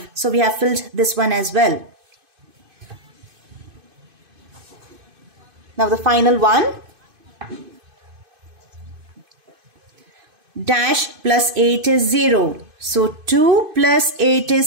So we have filled this one as well. Now the final one. Dash plus 8 is 0. So 2 plus 8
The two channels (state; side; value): late; left; 2.5 ms